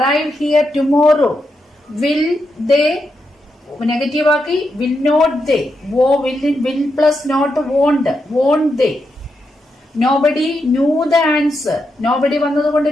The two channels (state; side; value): normal; both; correlation 0.84